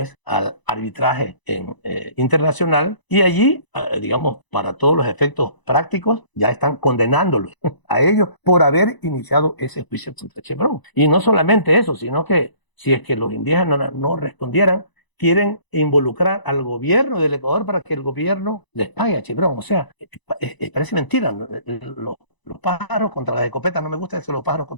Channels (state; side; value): late; right; 1.0 ms